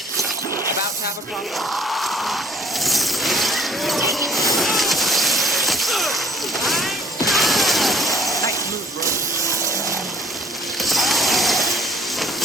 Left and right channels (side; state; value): both; normal; correlation 0.57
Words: Have a problem. Nice move, bro.